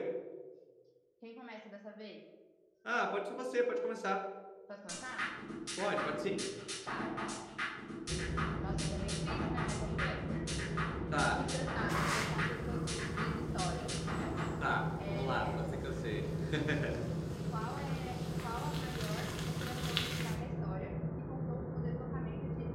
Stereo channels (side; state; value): both; identical; correlation 1.00